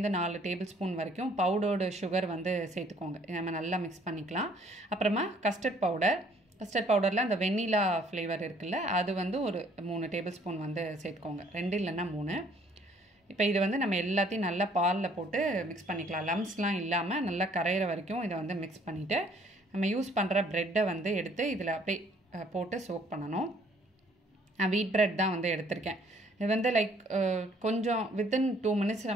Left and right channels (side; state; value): both; normal; correlation 0.61